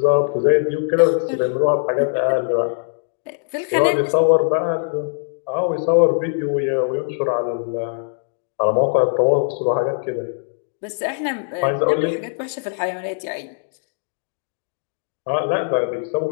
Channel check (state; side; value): silent; right; digital silence